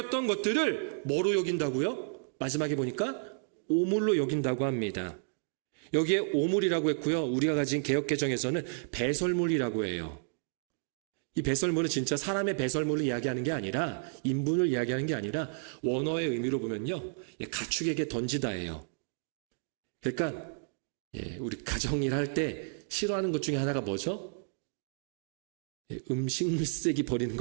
것들을 뭐로 여긴다고요? 마지막에 보니까 오물로 여긴다고 합니다. 여기에 오물이라고 했고요. 우리가 가진 개역개정에서는 배설물이라고 해요. 이 배설물은 진짜 사람의 배설물을 이야기하는 게 아니라 인분을 이야기하는 게 아니라 원어의 의미로 보면요. 가축에게 던지다예요. 그러니까 우리 가정일 할 때 싫어하는 것 중에 하나가 뭐죠? 음식물 쓰레기 버리는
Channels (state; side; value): silent; left; digital silence